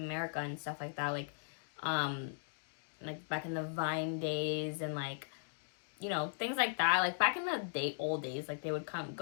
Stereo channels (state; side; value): silent; right; digital silence